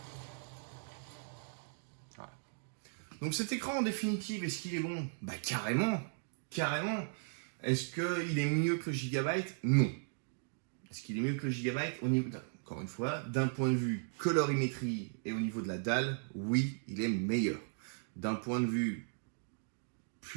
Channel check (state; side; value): silent; left; digital silence